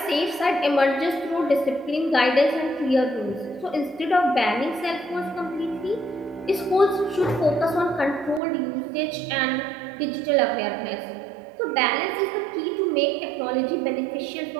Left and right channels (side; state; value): left; drops out; at 8.4 s